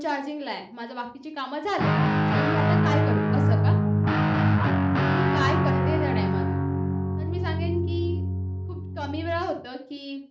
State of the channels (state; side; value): identical; both; correlation 1.00